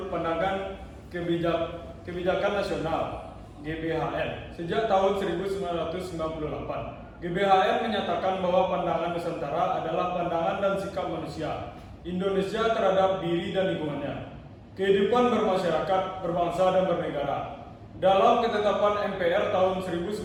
pandangan kebijakan nasional GBHN sejak tahun 1998. GBHN menyatakan bahwa pandangan Nusantara adalah pandangan dan sikap manusia Indonesia terhadap diri dan lingkungannya, kehidupan bermasyarakat, berbangsa dan bernegara. Dalam ketetapan MPR tahun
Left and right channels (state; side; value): identical; both; correlation 1.00